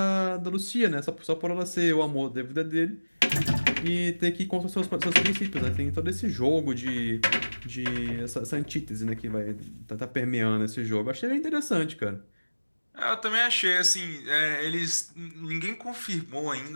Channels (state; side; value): inverted; both; correlation -1.00